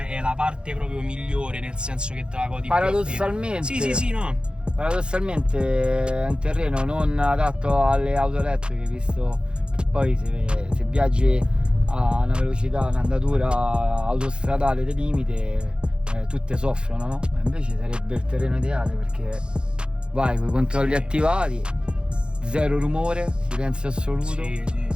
la parte proprio migliore, nel senso che te la godi paradossalmente più. Sì, no. Paradossalmente è un terreno non adatto alle auto elettriche, visto che poi se viaggi a una velocità, un'andatura autostradale del limite, tutte soffrono, no? Invece sarebbe il terreno ideale, perché vai con i controlli attivati, zero rumore, silenzio assoluto. Sì.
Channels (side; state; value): left; late; 0.052 ms